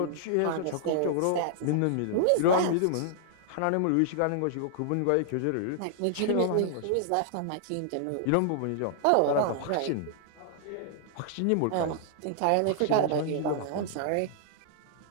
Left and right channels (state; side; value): different; both; correlation -0.01